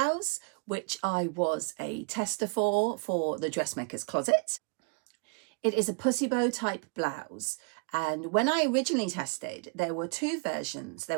which I was a tester for the dressmaker's closet. It is a pussy bow type blouse, and when I originally tested, there were two versions.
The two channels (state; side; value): quieter; left; 33.9 dB